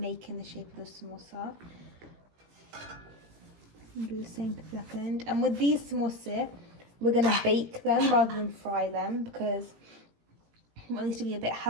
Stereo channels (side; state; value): left; late; 17 ms